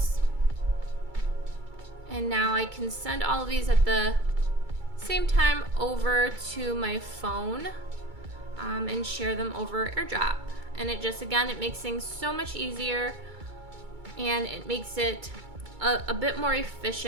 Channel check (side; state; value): left; late; 2.3 ms